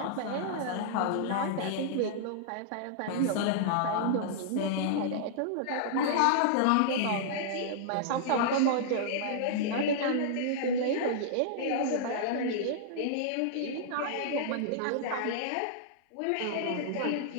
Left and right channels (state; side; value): different; both; correlation -0.02